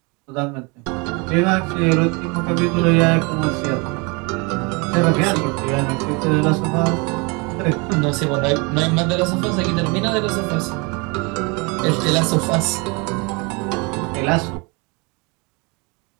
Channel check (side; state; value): left; quieter; 29.5 dB